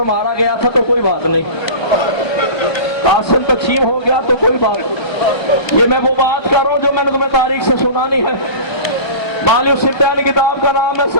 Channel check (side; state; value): right; late; 1.3 ms